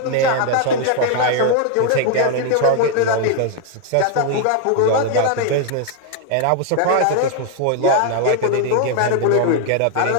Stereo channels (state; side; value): different; both; correlation 0.00